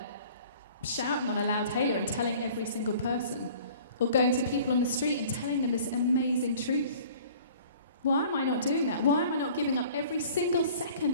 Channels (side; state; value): both; inverted; correlation -0.49